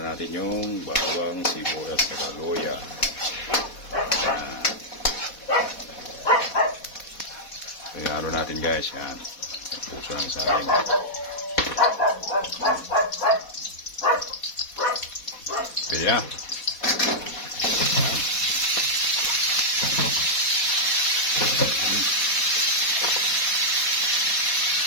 natin yung bawang, sibuyas, at luya. Kaya natin guys, yan. Puso ng saging. Pwede na.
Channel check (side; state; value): right; late; 4.2 ms